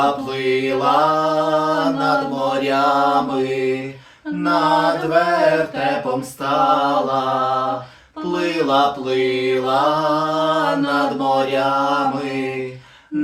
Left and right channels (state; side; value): identical; both; correlation 1.00